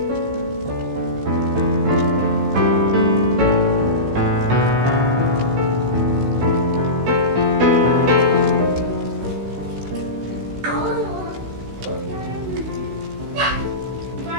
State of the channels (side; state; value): left; late; 16 ms